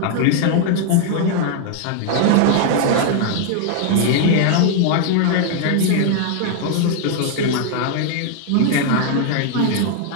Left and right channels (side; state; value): both; different; correlation 0.00